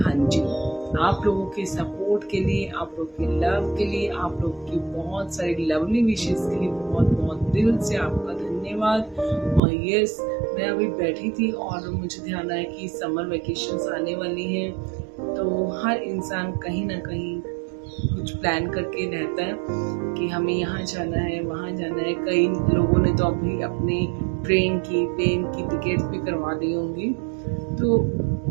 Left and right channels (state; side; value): drops out; left; at 9.6 s